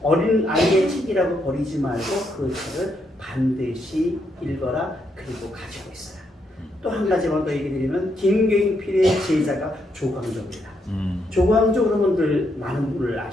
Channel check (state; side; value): normal; both; correlation 0.78